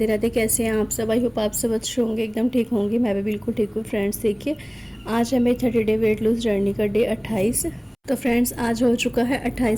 राधे। कैसे हैं आप सब? आई होप आप सब अच्छे होंगे, एकदम ठीक होंगे। मैं भी बिल्कुल ठीक हूँ। फ्रेंड्स देखिए, आज है मेरी 30 डे वेट लूज जर्नी का डे 28। तो फ्रेंड्स आज हो चुका है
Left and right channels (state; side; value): identical; both; correlation 1.00